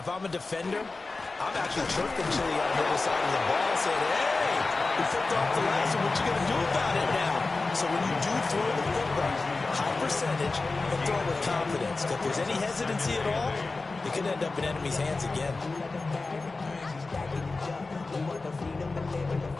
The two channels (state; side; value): quieter; right; 3.6 dB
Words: I'm a defender, I'm actually chirping Chili on the other side of the ball, saying, hey, we flipped off the last one. What you going to do about it now? So when you do throw the football, high percentage, and throw it with confidence. If there's any hesitancy at all, it could end up in enemy's hands again.